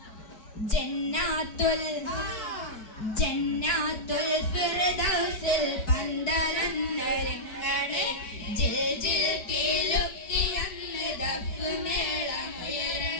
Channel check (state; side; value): late; right; 4.6 ms